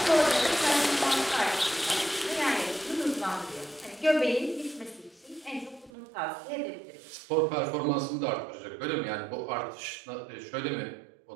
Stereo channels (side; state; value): left; drops out; at 5.9 s